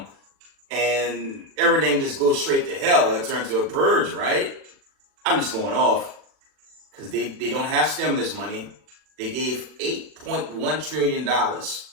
and everything just goes straight to hell. It turns to a purge, right? I'm just going off because they don't have stimulus money. They gave $8.1 trillion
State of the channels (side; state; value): left; late; 40 ms